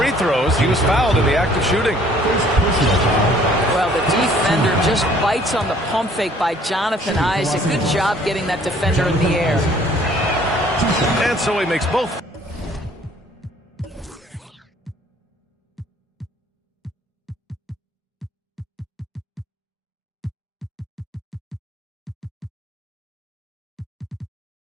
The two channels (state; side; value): normal; both; correlation 0.58